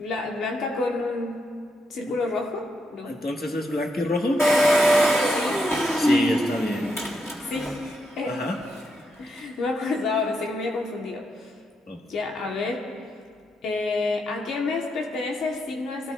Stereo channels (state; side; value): normal; both; correlation 0.81